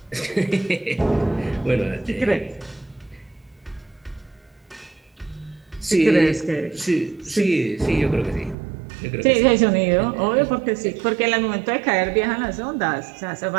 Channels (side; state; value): left; drops out; at 8.6 s